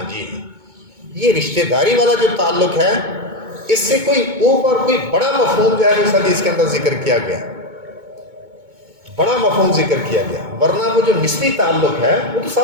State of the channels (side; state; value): left; late; 2.2 ms